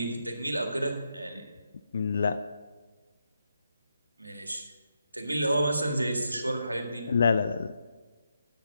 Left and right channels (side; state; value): both; inverted; correlation -0.84